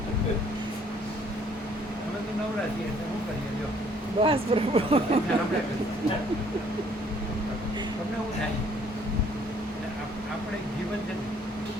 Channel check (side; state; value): both; normal; correlation 0.61